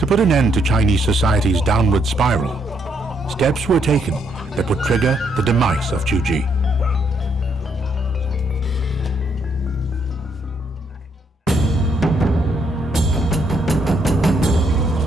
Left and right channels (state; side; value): normal; both; correlation 0.73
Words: put an end to Chinese society's downward spiral, steps were taken that would trigger the demise of Tuji.